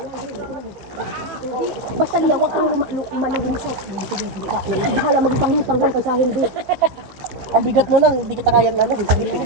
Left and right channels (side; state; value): left; late; 15 ms